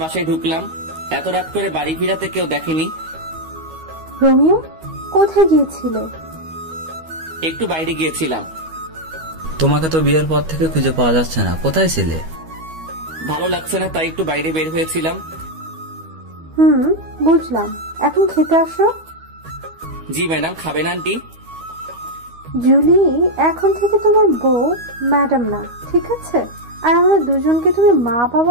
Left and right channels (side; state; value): left; late; 13 ms